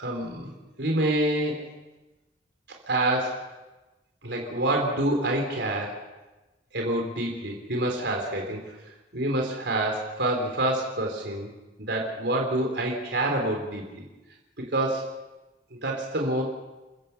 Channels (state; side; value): normal; both; correlation 0.19